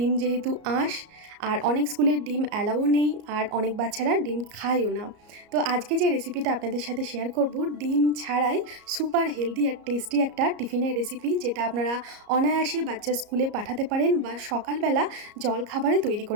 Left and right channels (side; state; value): left; late; 34 ms